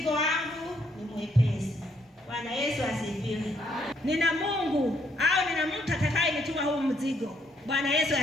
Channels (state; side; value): normal; both; correlation 0.71